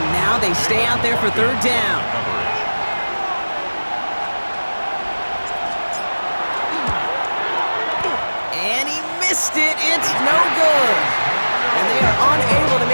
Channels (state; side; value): inverted; both; correlation -1.00